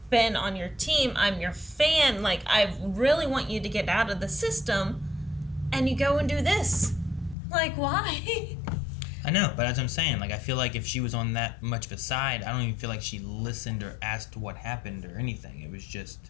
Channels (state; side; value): drops out; right; at 7.4 s